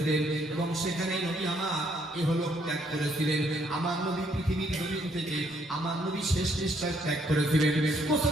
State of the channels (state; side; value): normal; both; correlation 0.70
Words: এবং সেখানে নবী আমার ইহলোক ত্যাগ করেছিলেন। আমার নবী পৃথিবীর জমিন থেকে আমার নবী শেষ নিঃশ্বাস ত্যাগ করেছিলেন।